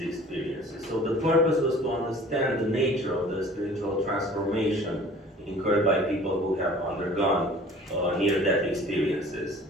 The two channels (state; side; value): normal; both; correlation 0.47